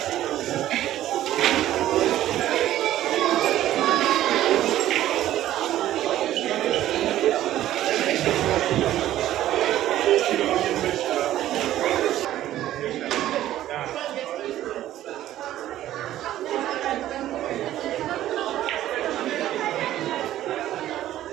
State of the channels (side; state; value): left; quieter; 13.3 dB